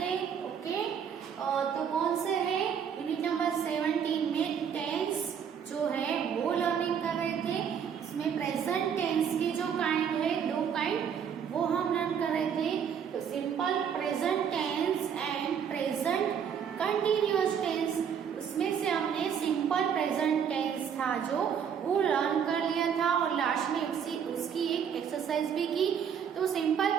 ओके. तो कौन से है यूनिट नंबर 17 में टेंस जो है वो लर्निंग कर रहे थे. इसमें प्रेजेंट टेंस के जो काइंड है, दो काइंड वो हम लर्न कर रहे थे. तो simple present tense and present continuous tense. उसमें से हमने सिंपल प्रेजेंट टेंस था जो वो लर्न कर लिया था और लास्ट में उसकी एक एक्सरसाइज भी की. तो सिंपल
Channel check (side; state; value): left; quieter; 7.7 dB